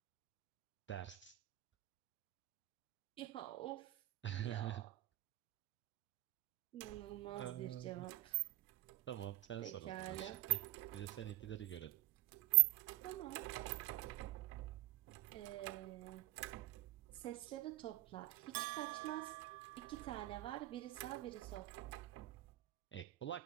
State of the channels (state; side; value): quieter; left; 17.2 dB